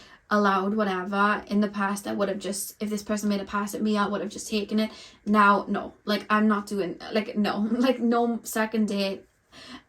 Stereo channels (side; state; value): both; identical; correlation 1.00